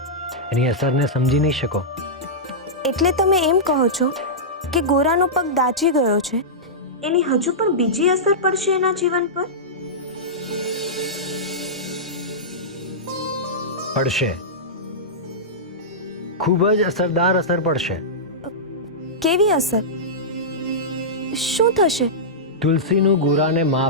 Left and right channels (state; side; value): normal; both; correlation -0.13